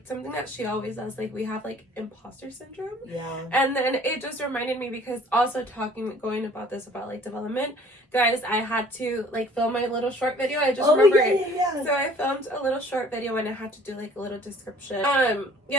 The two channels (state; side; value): normal; both; correlation 0.53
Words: something that she always does, like we have like imposter syndrome. And then it just reminded me, because also going about this about like development, guys, I had to like film my little short video. I just remember it. So I filmed a little short video and I had to do like a little description.